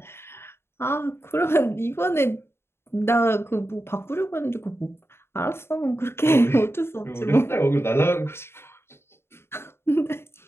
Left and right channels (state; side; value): late; right; 0.12 ms